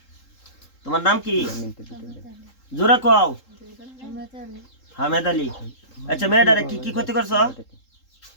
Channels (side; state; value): right; late; 3.8 ms